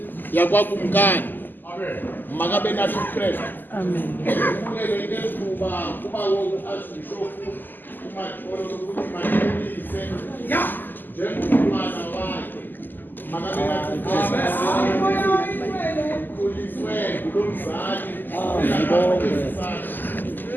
yakwakumkani makabe nathi uKristu amen kuleke ngethuba kuba uArchbishop uMadolo ukuthi manilise njengomntwana wakhe makabe nathi kuliswe kulomzali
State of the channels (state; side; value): late; right; 0.089 ms